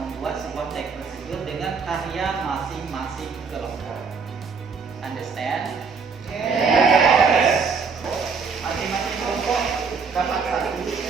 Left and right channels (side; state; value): left; quieter; 5.3 dB